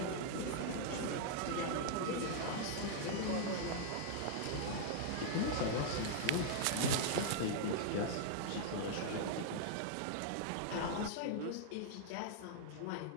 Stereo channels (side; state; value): both; different; correlation -0.01